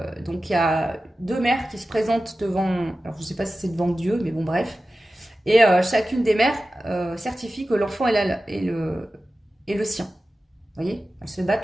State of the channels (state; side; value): normal; both; correlation 0.94